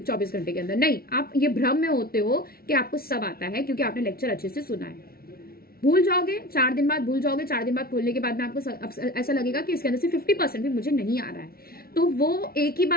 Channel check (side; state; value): right; late; 0.44 ms